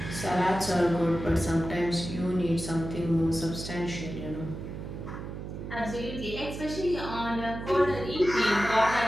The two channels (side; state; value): right; noise; hum, 8 dB below the sound